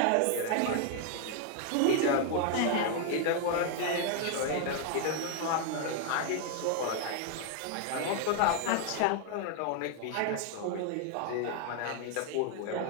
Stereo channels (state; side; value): different; both; correlation 0.00